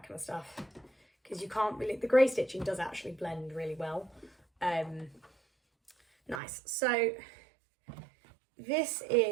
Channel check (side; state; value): left; drops out; at 6.4 s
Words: kind of stuff, because you can't really, the grey stitching does actually blend really well. Nice. So this